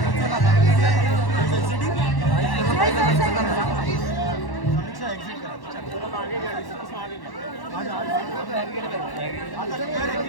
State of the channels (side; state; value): right; late; 1.1 ms